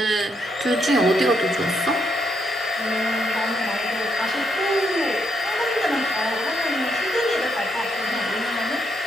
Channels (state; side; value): normal; both; correlation 0.77